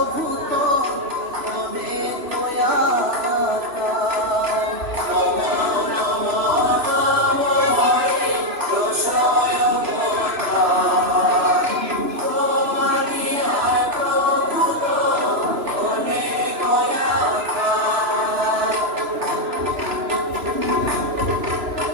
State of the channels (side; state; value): left; late; 3.0 ms